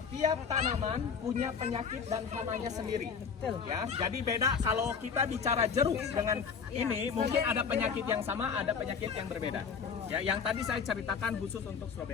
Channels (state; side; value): quieter; right; 6.2 dB